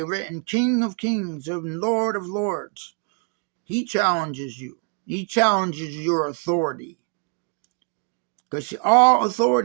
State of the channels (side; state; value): left; quieter; 38.3 dB